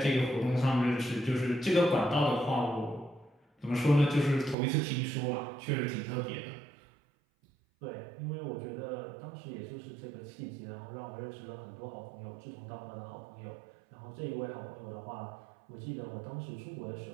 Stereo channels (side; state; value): left; drops out; at 4.5 s